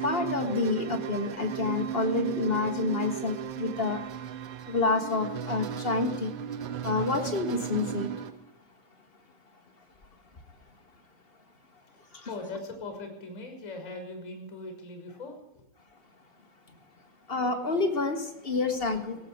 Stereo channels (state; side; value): late; right; 2.8 ms